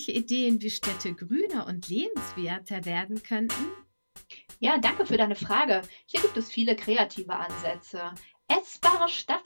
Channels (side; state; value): both; inverted; correlation -1.00